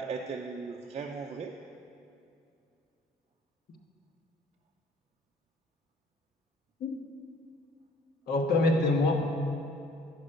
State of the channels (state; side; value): normal; both; correlation 0.56